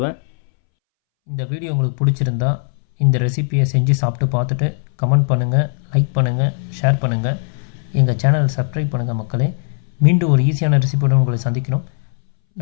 இந்த வீடியோ உங்களுக்கு பிடிச்சிருந்தா இந்த ரெசிபியை செஞ்சு சாப்பிட்டு பார்த்துட்டு கமெண்ட் பண்ணுங்கள், லைக் பண்ணுங்கள், ஷேர் பண்ணுங்கள். எங்கள் சேனலை சப்ஸ்கிரைப் பண்ணுங்கள் மக்களே. மீண்டும் ஒரு ஈஸியான ரெசிபியோடு உங்களை சந்திக்கிறோம்.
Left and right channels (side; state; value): right; silent; 65 dB below the other